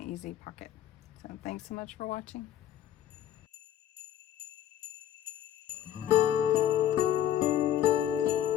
easy pocket. So thanks so much for watching.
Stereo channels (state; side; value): quieter; right; 11.2 dB